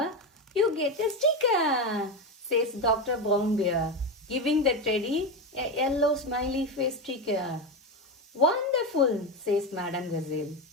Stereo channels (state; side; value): normal; both; correlation 0.15